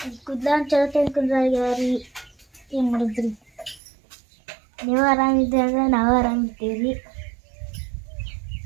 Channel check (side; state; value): left; drops out; at 3.8 s